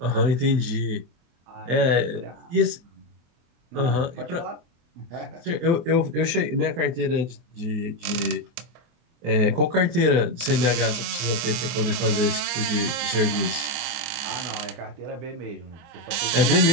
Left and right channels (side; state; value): left; late; 24 ms